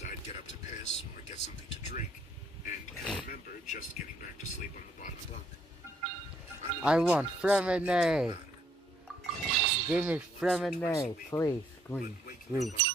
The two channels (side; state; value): both; normal; correlation 0.68